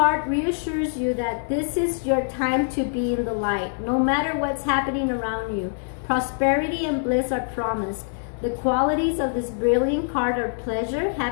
reassures you that this is your time to be in the light. No matter what's happening around you, prosperity and bliss are promised. The qualities of this brilliant card are pleasure,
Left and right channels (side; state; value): right; silent; digital silence